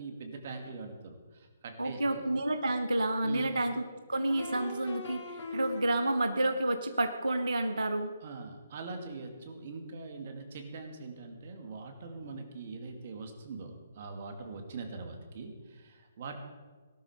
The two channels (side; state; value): both; inverted; correlation -0.89